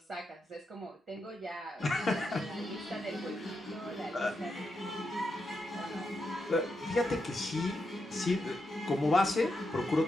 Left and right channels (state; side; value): normal; both; correlation 0.85